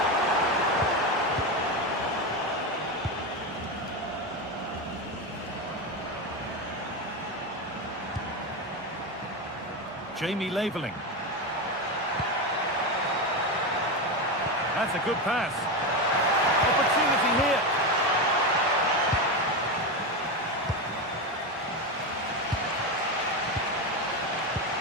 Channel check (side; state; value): both; normal; correlation 0.15